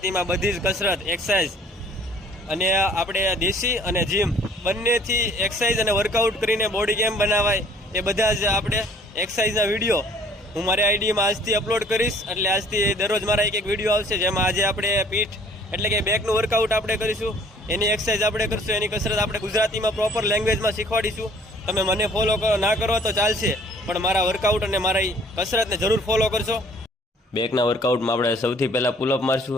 બધી જ કસરત, એક્સરસાઇઝ અને આપણે દેશી અને જીમ બંનેથી એક્સરસાઇઝ અને વર્કઆઉટ કરીને બોડી કેમ બનાવાય એ બધા જ આપણે એક્સરસાઇઝના વિડીયો હું મારી આઈડીમાં આજથી અપલોડ કરીશ. એટલે આજથી દરરોજ મારા એક વિડીયો આવશે, જેમાં આજે આપણે પીઠ એટલે કે બેકનું વર્કઆઉટ આપણે કરીશું, એની એક્સરસાઇઝ આપણે કરીશું, એની કસરત આપણે ગુજરાતીમાં પ્રોપર લેંગ્વેજમાં શીખવાડીશું. તમે મને ફોલો ના કરો તો ચાલશે, પણ મારા વર્કઆઉટ અને મારી કસરતને જરૂર ફોલો કરશો. બેકના વર્કઆઉટમાં આપણે સૌથી પહેલાં પુલઅપ મારશું.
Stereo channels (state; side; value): normal; both; correlation 0.56